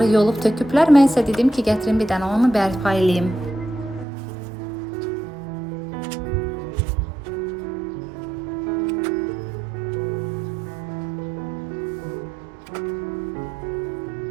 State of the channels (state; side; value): drops out; left; at 4.0 s